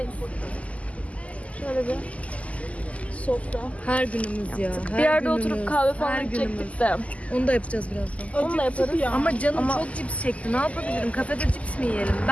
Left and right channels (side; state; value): right; late; 0.068 ms